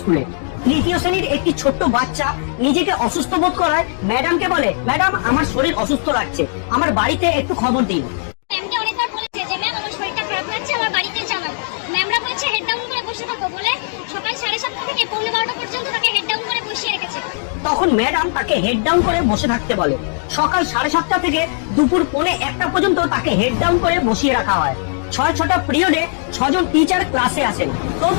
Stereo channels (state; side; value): silent; right; digital silence